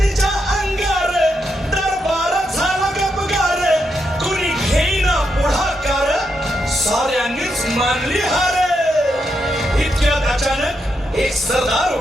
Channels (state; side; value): normal; both; correlation 0.82